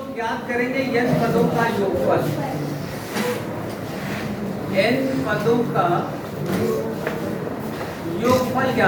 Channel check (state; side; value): identical; both; correlation 1.00